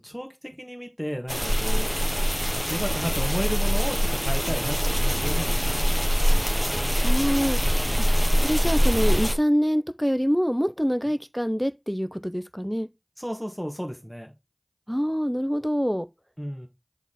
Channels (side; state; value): both; identical; correlation 1.00